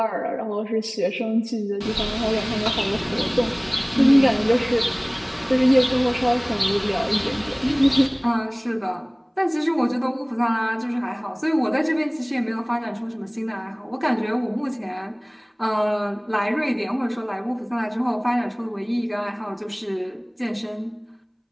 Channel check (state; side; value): identical; both; correlation 1.00